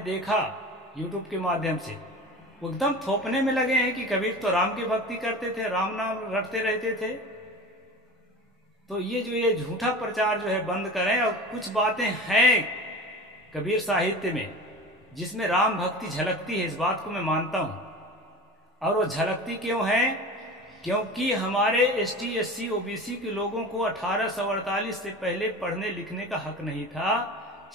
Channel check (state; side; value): normal; both; correlation 0.34